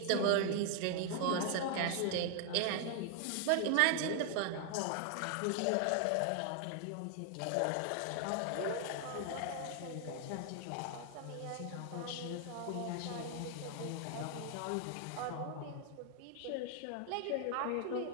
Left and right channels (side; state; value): both; different; correlation 0.00